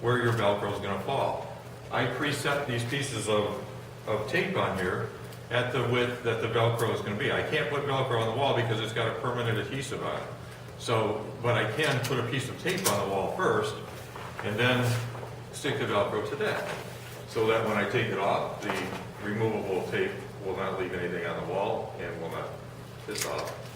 where your Velcro is going to fall. I preset these pieces of tape on here at the width that the Velcro is going to be. I can't put Velcro on the wall because it's got a permanent adhesive on it. So, but I can put a piece of tape on the wall first and then stick the Velcro to that, so that when I take it off, the removable tape will not leave anything on the wall and will not piss off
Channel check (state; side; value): identical; both; correlation 1.00